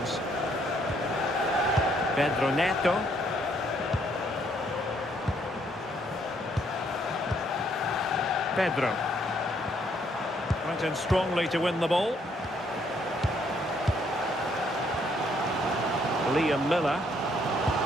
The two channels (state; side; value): normal; both; correlation 0.69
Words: Pedro Neto. Pedro. Went in strongly to win the ball. Liam Miller.